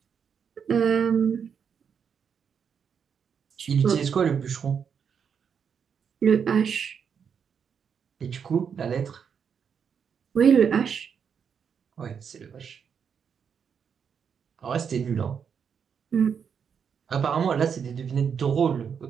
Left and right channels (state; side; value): quieter; left; 7.0 dB